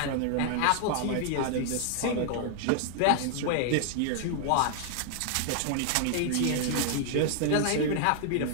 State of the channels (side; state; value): both; different; correlation -0.01